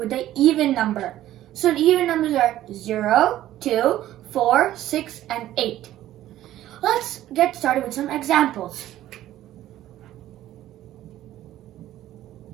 an even number. So the even numbers are 0, 2, 4, 6, and 8. Let's get started with some examples.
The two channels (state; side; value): quieter; left; 13.6 dB